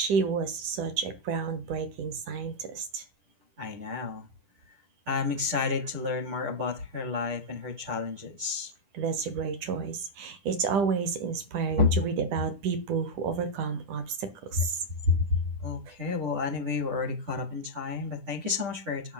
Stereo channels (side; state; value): left; late; 10 ms